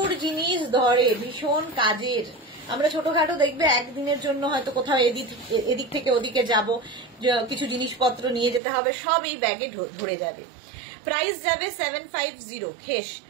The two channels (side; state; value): left; drops out; at 8.6 s